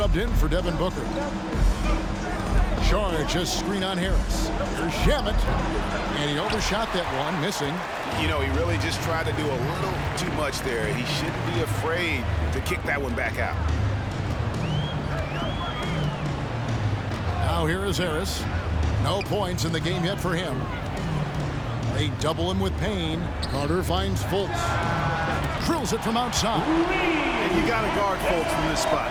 in for Devin Booker. Saric just screen on Harris. Here's Shamet. And he overshot that one, missing. You know, he really just tried to do a little too much there. He shouldn't be afraid to kick that one back out. Now here is Harris. No points in the game yet for him. They double him with Payne. Carter finds Fultz. Drills it from outside. And you got to guard Fultz from this spot.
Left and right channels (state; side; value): identical; both; correlation 1.00